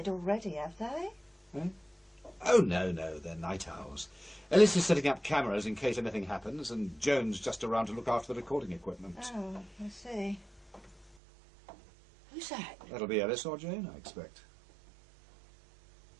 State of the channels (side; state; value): left; drops out; at 11.2 s